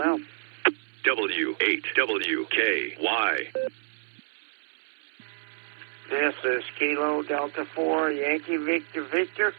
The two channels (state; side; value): silent; left; 59 dB below the other